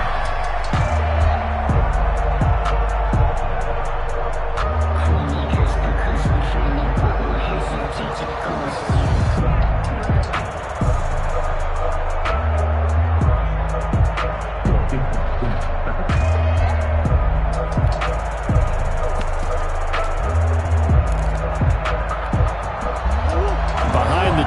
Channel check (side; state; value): both; identical; correlation 1.00